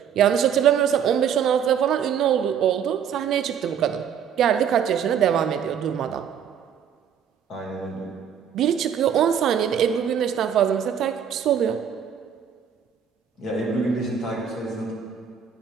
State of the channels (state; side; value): quieter; left; 8.2 dB